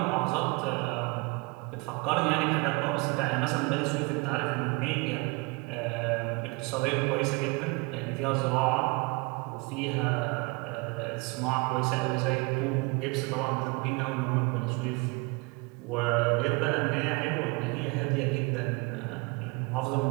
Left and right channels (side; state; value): left; quieter; 28.4 dB